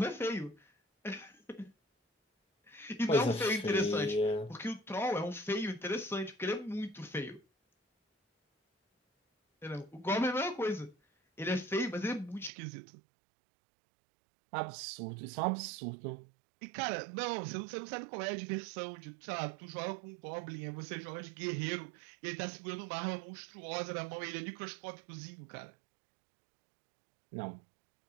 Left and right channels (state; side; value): drops out; left; at 12.5 s